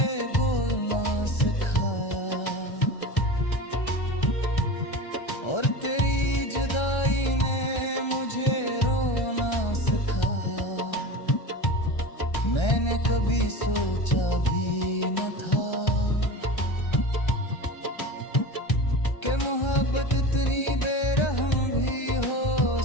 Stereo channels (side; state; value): right; late; 1.3 ms